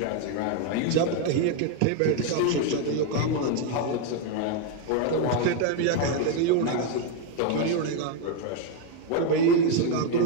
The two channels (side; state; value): both; different; correlation 0.01